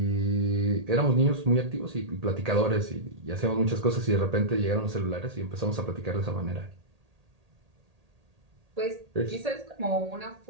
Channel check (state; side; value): late; left; 1.8 ms